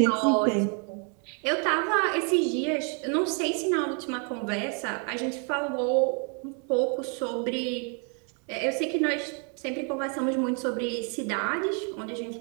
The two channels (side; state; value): left; quieter; 39.1 dB